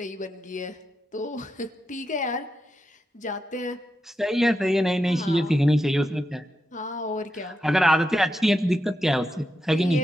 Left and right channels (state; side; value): normal; both; correlation 0.87